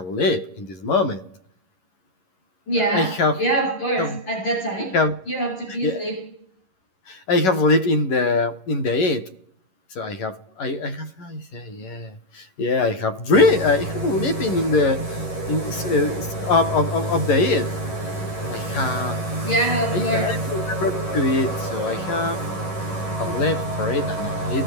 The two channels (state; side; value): late; right; 11 ms